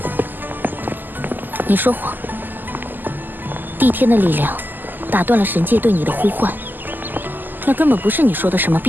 你说谎，帝天的力量打断了神界对你的呼唤，那根本不是你说的什么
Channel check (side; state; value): left; late; 0.088 ms